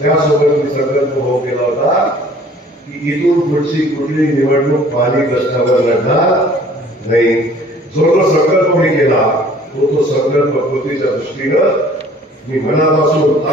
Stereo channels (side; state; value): both; normal; correlation 0.53